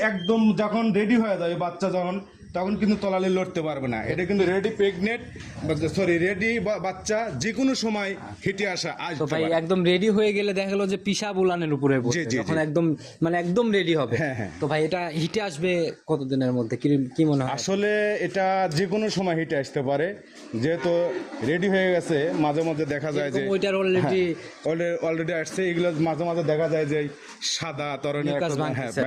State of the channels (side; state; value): both; identical; correlation 1.00